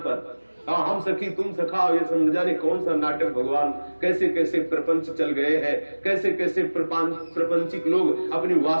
पर हम सखी तुम सखा, ये समझ जाने कौन सा नाटक। भगवान कैसे कैसे प्रपंच चल गए हैं, कैसे कैसे प्रपंचिक लोग अपनी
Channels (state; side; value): inverted; both; correlation -1.00